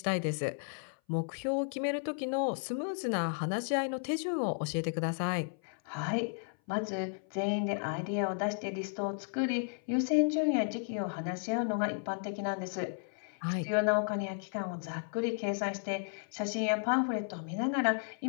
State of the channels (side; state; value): right; silent; 55 dB below the other